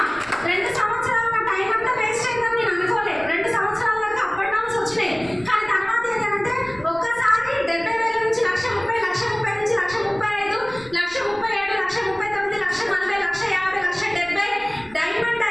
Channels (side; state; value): right; noise; rumble, 22 dB below the sound